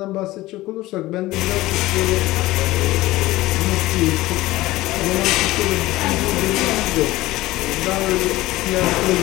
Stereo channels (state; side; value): quieter; right; 17.9 dB